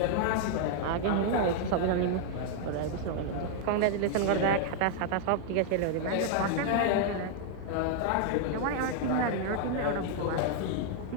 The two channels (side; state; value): both; different; correlation 0.00